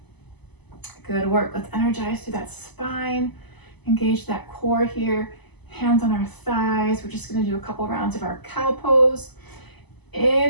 Good work. Let's energize through that spine. Engage that core here. Hands on our thighs. We're just going to do a couple rounds of our cow pose.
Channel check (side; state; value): right; late; 0.99 ms